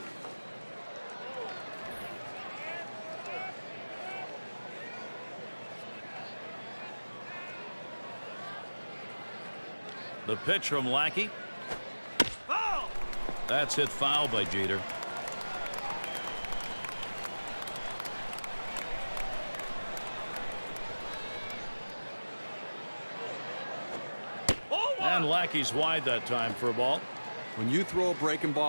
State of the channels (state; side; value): inverted; both; correlation -1.00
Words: The pitch from Lackey. Foul! That's hit foul by Jeter. And Lackey's wide that time for a ball. When you throw a breaking